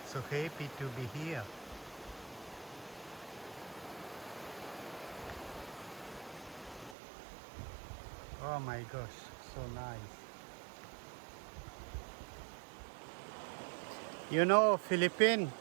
So happy to be here. Oh my gosh, so nice. You know, Philippines,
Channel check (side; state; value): left; drops out; at 7.0 s